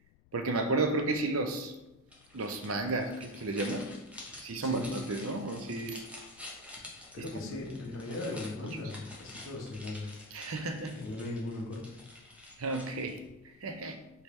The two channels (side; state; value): left; noise; rumble, 28 dB below the sound